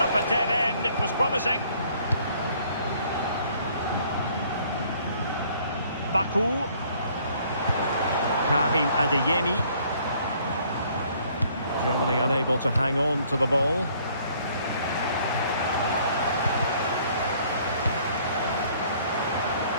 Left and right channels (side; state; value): both; inverted; correlation -0.60